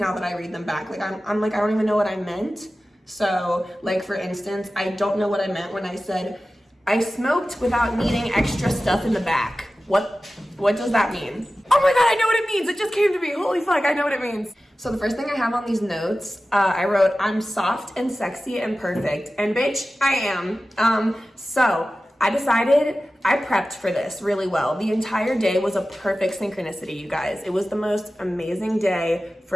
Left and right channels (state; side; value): normal; both; correlation 0.95